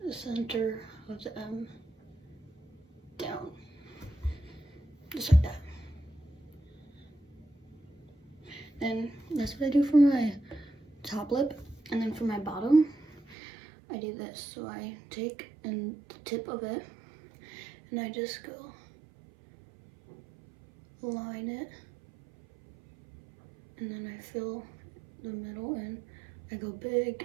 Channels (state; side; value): drops out; left; at 13.4 s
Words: the center of the M down, just like that. Then that's what I do for my top lip, and then for my bottom, I do this. So I take the tip of it, and I just go line it, and then I fill the middle in. I go